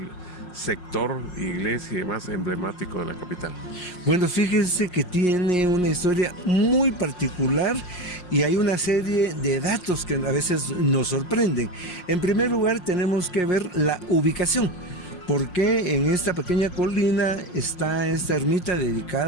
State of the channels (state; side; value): late; right; 5.5 ms